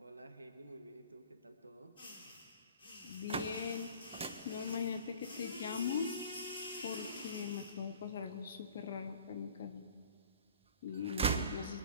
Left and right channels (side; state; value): both; inverted; correlation -0.45